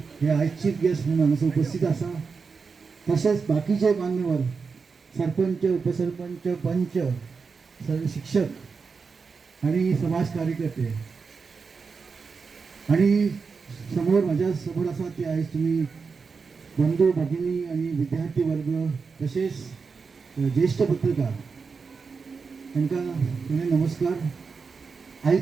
हे आयज चीफ गेस्ट म्हणून हांगासर उपस्थित आसा. तसेच बाकीचे मान्यवर सरपंच, उपसरपंच, पंच, सर्व शिक्षक आणि समाज कार्यकर्ते आणि माझ्या समोर आसा ते आयज तुम्ही बंधू भगिनी आणि विद्यार्थी वर्ग तसेच ज्येष्ठ पत्रकार तांकां नमस्कार.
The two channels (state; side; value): quieter; left; 5.1 dB